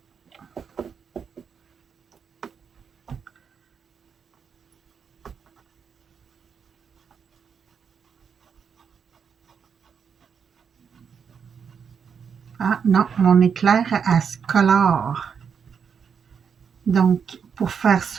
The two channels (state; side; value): quieter; left; 6.8 dB